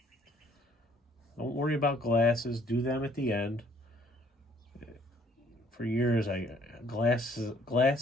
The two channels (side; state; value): both; normal; correlation 0.61